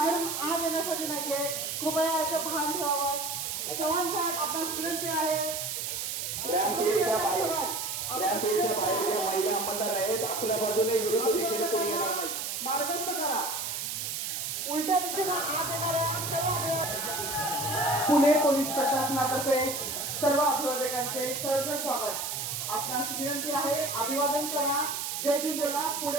आत येण्यासाठी नाहीये। कृपया याचं भान ठेवावं। चव्हाण साहेब आपल्यास विनंती आहे रॅम्प एच्या बाहेर ज्या महिला अंमलदार आहेत आपल्या बाजूने विरुद्ध दिशेने कोणी येणार नाही, मार्गस्थ करा। उलट्या दिशेने आत येणाऱ्या पुणे पोलीस प्रशासनातर्फे सर्व अभिवादकांचे सहर्ष स्वागत। आपणास विनंती आहे अभिवादन करा, जय भीम बोला,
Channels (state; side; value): noise; right; hiss, 3 dB below the sound